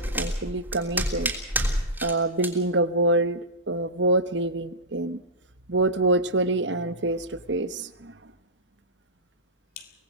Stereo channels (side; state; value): both; normal; correlation -0.13